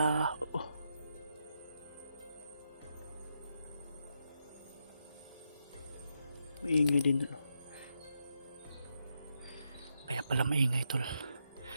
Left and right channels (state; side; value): inverted; both; correlation -0.82